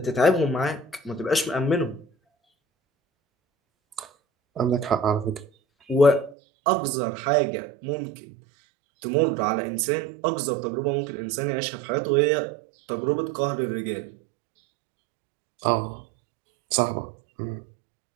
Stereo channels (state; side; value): drops out; left; at 6.4 s